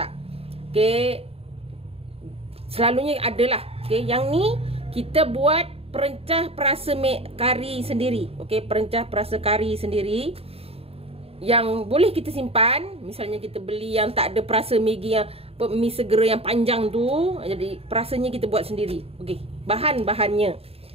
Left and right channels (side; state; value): left; late; 0.28 ms